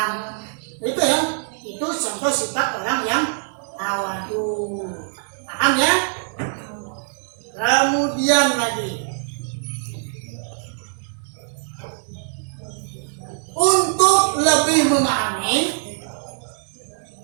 Itu ya, itu contoh sifat orang yang tawadu. Paham ya? Kemudian lagi, untuk lebih memahami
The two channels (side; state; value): left; silent; digital silence